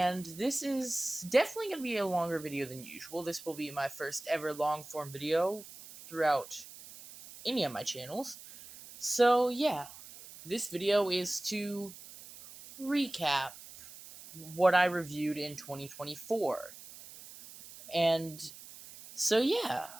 this is definitely going to be a longer video than usual. This will be my first ever long form video throughout any of my channels. So, yeah, this video is to recap what I reviewed in 2024. And so, yeah.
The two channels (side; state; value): right; noise; hiss, 16 dB below the sound